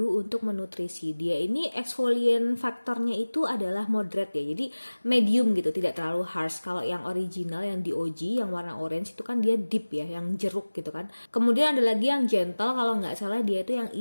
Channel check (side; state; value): both; inverted; correlation -1.00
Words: untuk menutrisi. Dia ini exfoliant faktornya itu adalah moderate ya. Jadi medium gitu, tidak terlalu harsh. Kalau yang original yang di OG yang warna orange itu kan dia deep ya, yang jeruk gitu kan. Kemudian ada lagi yang gentle, kalau nggak salah dia itu yang